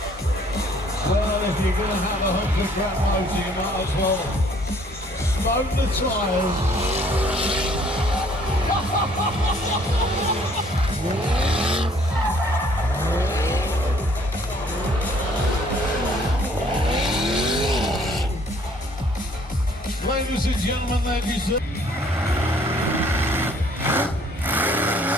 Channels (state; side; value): normal; both; correlation 0.60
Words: Well, if you're going to have 100 gram motor, you might as well smoke the tyres. Ladies and gentlemen, that is it.